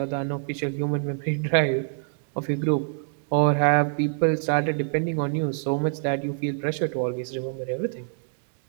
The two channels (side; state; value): left; silent; 61 dB below the other